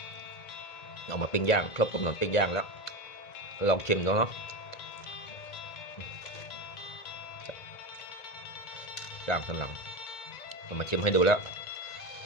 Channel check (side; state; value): right; late; 1.9 ms